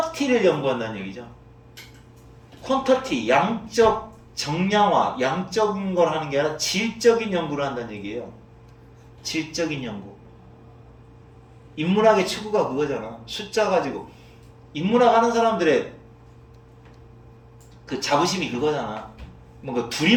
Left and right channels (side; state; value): both; identical; correlation 1.00